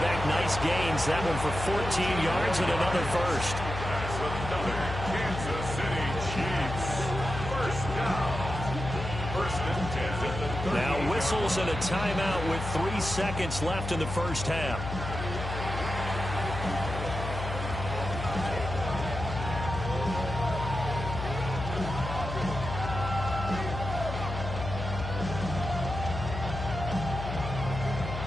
nice gains. That one for 14 yards and another first. That's another Kansas City Chiefs. First down. First and 10 at the 30. Now whistles and a timeout with 3 seconds left in the first half.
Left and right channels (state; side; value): noise; left; hum, 6 dB below the sound